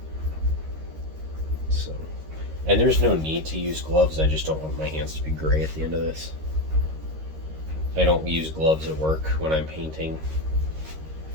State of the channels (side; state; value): left; late; 13 ms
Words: So, and there's no need to use gloves. I just don't want my hands to be gray at the end of this. I don't use gloves at work when I'm painting,